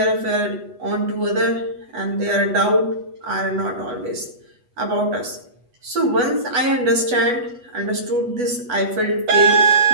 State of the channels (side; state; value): left; late; 8.1 ms